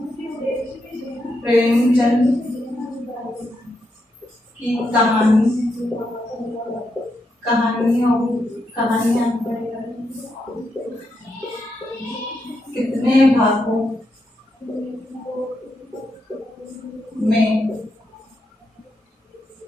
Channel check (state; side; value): normal; both; correlation 0.82